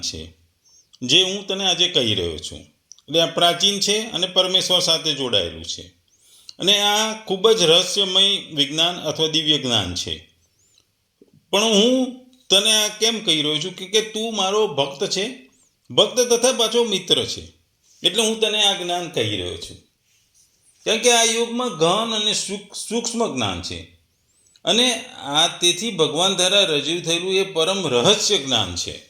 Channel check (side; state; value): both; identical; correlation 1.00